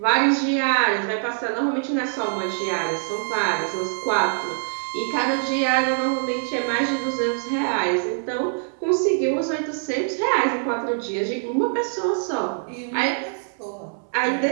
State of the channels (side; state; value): left; silent; 63 dB below the other